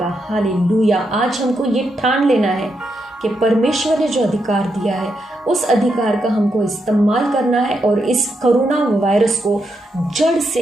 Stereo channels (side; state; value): both; normal; correlation 0.82